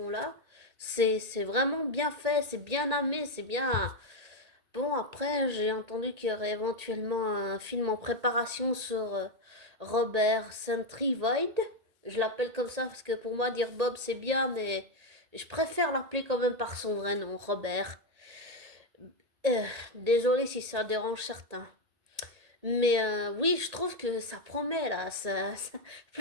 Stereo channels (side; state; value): left; late; 1.8 ms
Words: là. C'est vraiment bien fait, c'est bien amené, c'est bien. Bon, après, j'ai entendu qu'il y aurait éventuellement un film en préparation sur Robert Sentry Void. Je l'appelle comme ça parce que pour moi, dire Bob, c'est bien, mais je préfère l'appeler quand même par son vrai nom, Robert. Euh, Désolé si ça dérange certains. Mais oui, je trouve que ça promet là.